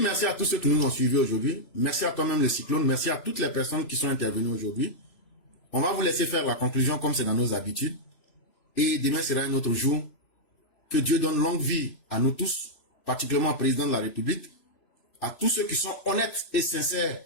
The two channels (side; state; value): right; late; 3.0 ms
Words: à tous ceux qui nous ont suivis aujourd'hui. Merci à toi-même le cyclone. Merci à toutes les personnes qui sont intervenues aujourd'hui. On va vous laisser faire la conclusion comme c'est dans nos habitudes. Et demain sera un autre jour. Que Dieu donne longue vie à nous tous, particulièrement au président de la République, à tous ceux qui sont honnêtes et sincères